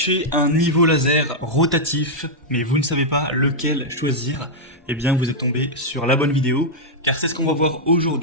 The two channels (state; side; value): normal; both; correlation -0.05